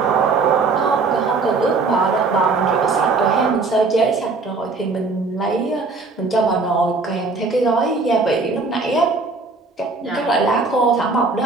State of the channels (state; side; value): quieter; left; 4.0 dB